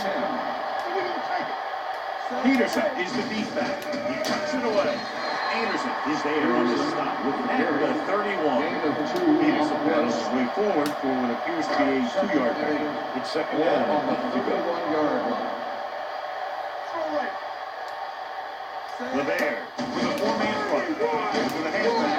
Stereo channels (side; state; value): both; identical; correlation 1.00